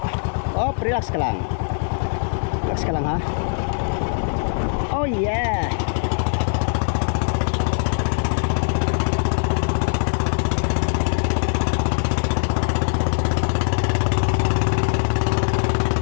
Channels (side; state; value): right; silent; 63 dB below the other